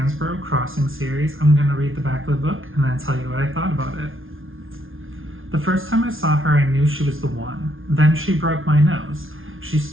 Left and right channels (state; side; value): late; left; 0.59 ms